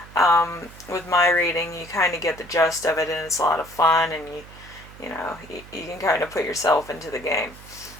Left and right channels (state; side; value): noise; right; hum, 19 dB below the sound